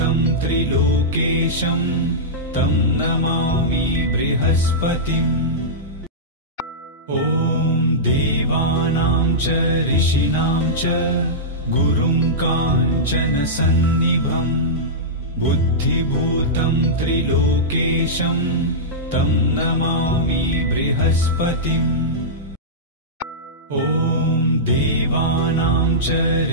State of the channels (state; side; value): normal; both; correlation -0.13